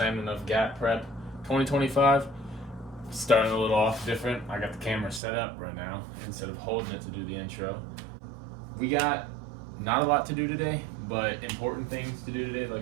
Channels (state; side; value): drops out; left; at 5.2 s